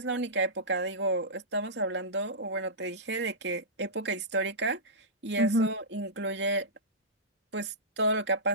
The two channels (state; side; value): normal; both; correlation -0.17